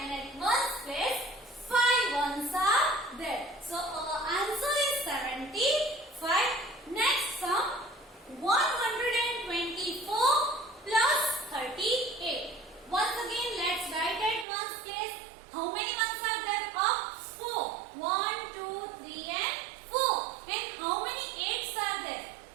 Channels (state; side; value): drops out; left; at 14.5 s